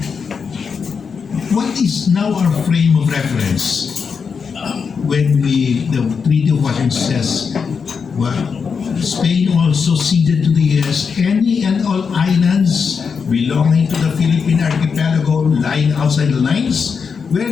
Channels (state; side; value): quieter; right; 5.8 dB